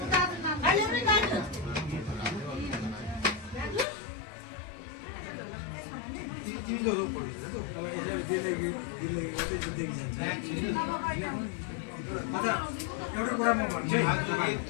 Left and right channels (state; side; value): drops out; right; at 3.9 s